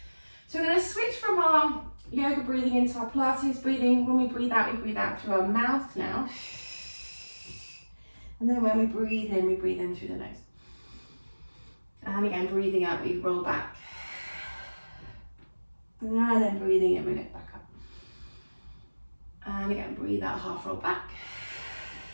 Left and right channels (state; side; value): inverted; both; correlation -1.00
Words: So we're going to switch from our yoga breathing into our Pilates breathing. When we breathe out through our mouth now. And then when we breathe in through the nose. And again, breathing out, we roll back. And then breathing in, we lift back up. And again, breathe out, half roll back.